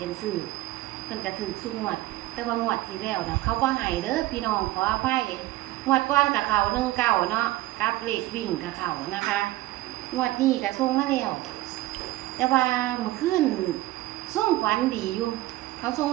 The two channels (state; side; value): quieter; left; 17.2 dB